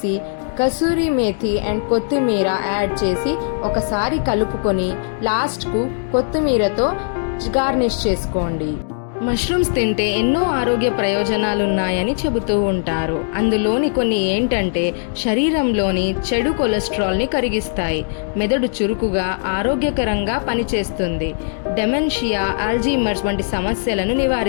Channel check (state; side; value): silent; right; digital silence